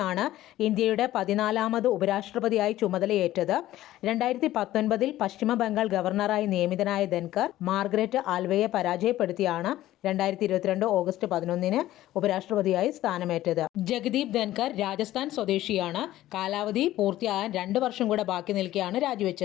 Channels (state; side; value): quieter; right; 14.6 dB